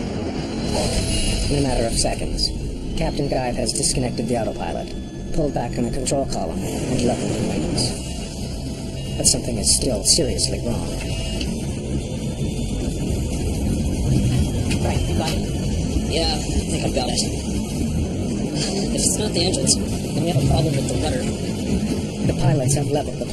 In a matter of seconds, Captain Guide has disconnected the autopilot, pulled back on the control column, and leveled the wings. But something is still seriously wrong. Right, you got it? Yeah, I think I've got it. If it's not the engines, then we have a problem with the rudder. The pilots have leveled the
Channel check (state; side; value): identical; both; correlation 1.00